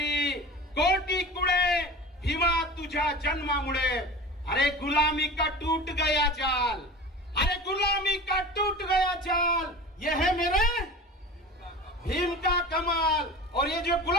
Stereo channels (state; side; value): normal; both; correlation 0.35